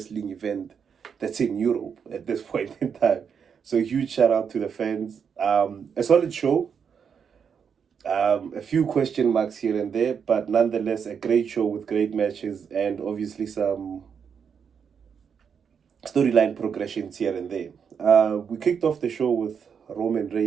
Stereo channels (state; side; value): quieter; left; 6.9 dB